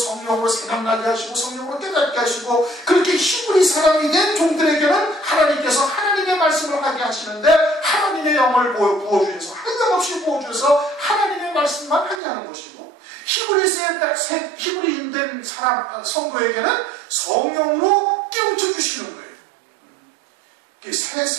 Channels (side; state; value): left; drops out; at 12.2 s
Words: 생각나게 하시고 성령으로 깨닫게 하시고 그렇게 히브리 사람이 된 종들에게는 하나님께서 하나님의 말씀을 하게 하시는데 하나님의 영을 부어주셔서 한량없이 부어주셔서 하나님의 말씀만 하게 하는 것이고 히브리인 된 사람 성도에게는 성령으로 깨우쳐 주시는 거예요. 새